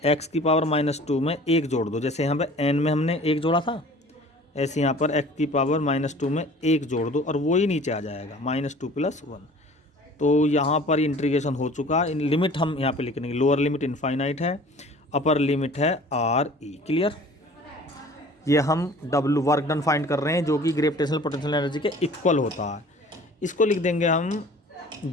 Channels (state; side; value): normal; both; correlation 0.47